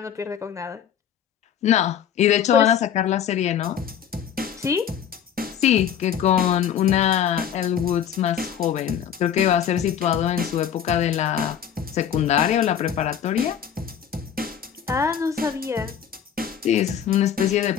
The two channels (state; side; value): quieter; right; 8.9 dB